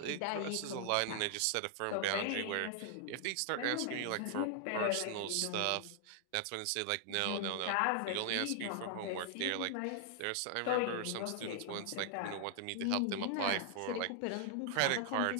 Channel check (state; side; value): different; both; correlation 0.00